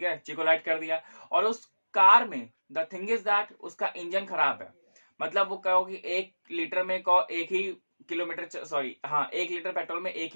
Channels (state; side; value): inverted; both; correlation -1.00